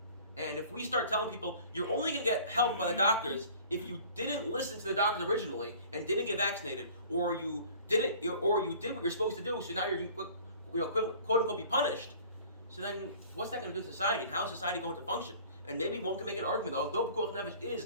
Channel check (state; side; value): inverted; both; correlation -0.48